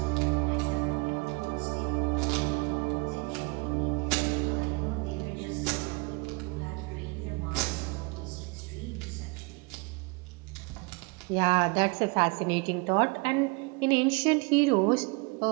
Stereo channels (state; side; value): quieter; left; 28.4 dB